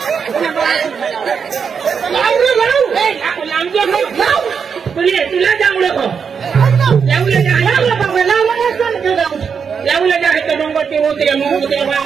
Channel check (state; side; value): quieter; left; 6.4 dB